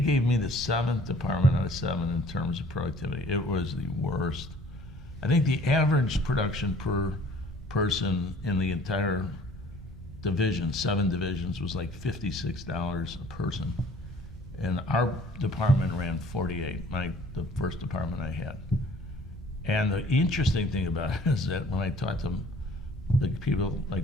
me the 7th department out of 7 in terms of productivity. It was the worst. I think the average production per person in the entire division, 7 divisions, was like $56 a person. And our department ran 48, the first department I had. And the interesting thing about it is that when I talked to the people, like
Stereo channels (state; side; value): normal; both; correlation 0.53